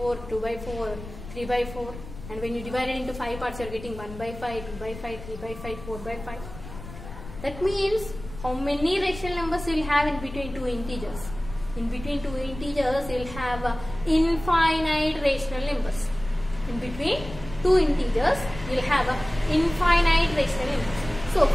2 by 4, 3 by 4. And when you divide it into 5 parts, you are getting 1 by 5, 2 by 5, 3 by 5, 4 by 5. That means how many rational numbers you will have in between two integers? In between two integers, you will have infinite rational numbers. In between two integers, you will have infinite rational numbers. So,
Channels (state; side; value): noise; left; rumble, 13 dB below the sound